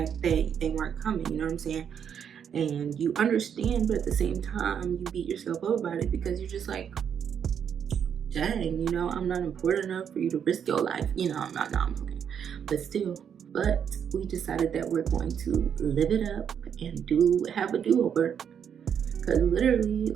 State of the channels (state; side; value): quieter; left; 8.0 dB